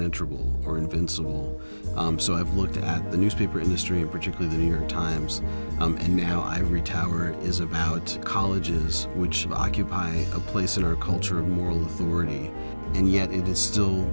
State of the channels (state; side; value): inverted; both; correlation -1.00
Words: or invincible. So I've looked at the newspaper industry, and particularly the New York Times, and now Ivory Tower is about colleges which occupy a place in our culture of moral authority, and yet it is still